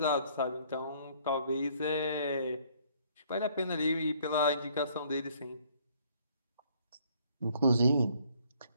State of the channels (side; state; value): both; inverted; correlation -0.62